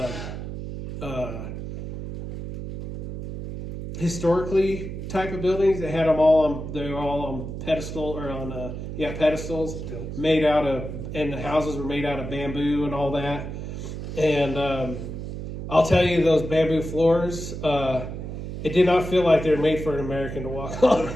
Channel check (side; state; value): right; noise; hum, 7 dB below the sound